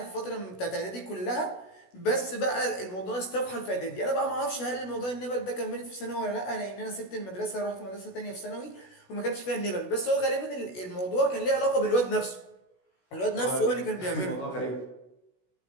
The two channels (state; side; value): late; right; 16 ms